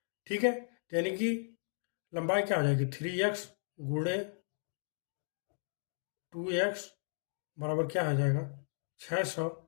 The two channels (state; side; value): silent; right; digital silence